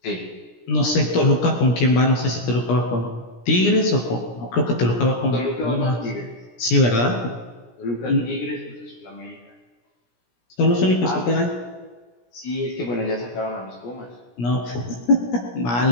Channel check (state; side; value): late; right; 17 ms